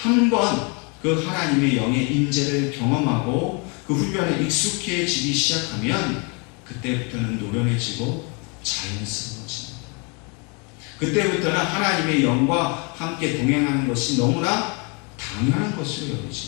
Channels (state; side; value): quieter; right; 33.0 dB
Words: 그 하나님의 영의 임재를 경험하고 그 훈련에 익숙해지기 시작하면 그때부터는 노련해지고 자연스러워집니다. 그때부터는 하나님의 영과 함께 동행하는 것이 너무나 당연한 것으로